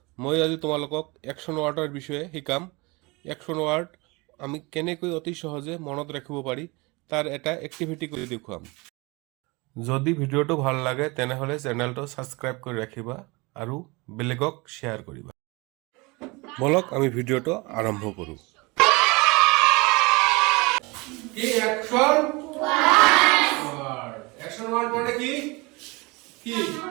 मैं आज तुम्हालोকক action वार्डर विषय शिकाम। एक्शन वार्ड आमी केनेকৈ অতি সহজে মনত ৰাখিব পাৰি তাৰ এটা এক্টিভিটি কৰি দেখুৱাম। যদি ভিডিঅ'টো ভাল লাগে তেনেহলে চেনেলটো সাবস্ক্ৰাইব কৰি ৰাখিবা আৰু বেলেগক শ্বেয়াৰ কৰিবা। বলক আমি ভিডিঅ'টো আৰম্ভ কৰো। কি অ্যাকশন ওয়ার্ড অ্যাকশন ওয়ার্ড মানে কি কি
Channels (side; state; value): left; quieter; 25.8 dB